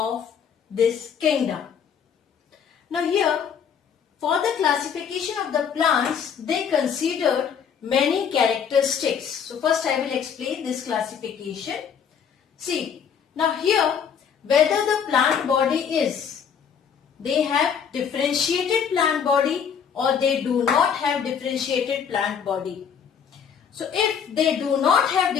this kingdom. Now here for the classification of the plants they considered many characteristics. So first I will explain this classification. See, now here whether the plant body is, they have differentiated plant body or they do not have differentiated plant body. So if they do not have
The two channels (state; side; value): quieter; right; 7.4 dB